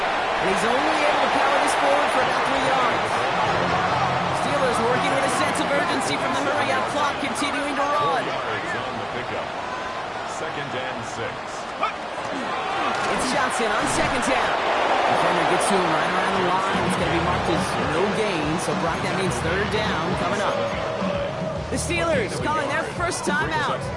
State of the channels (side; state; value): both; identical; correlation 1.00